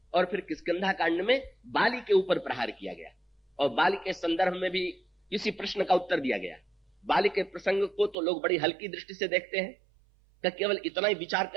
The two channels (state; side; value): drops out; left; at 8.2 s